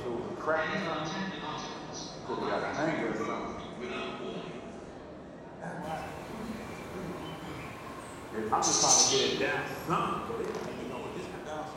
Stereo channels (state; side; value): identical; both; correlation 1.00